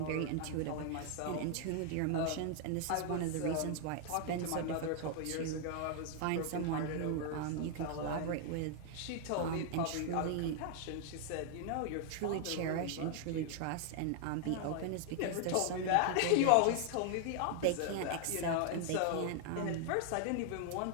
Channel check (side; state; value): both; different; correlation 0.00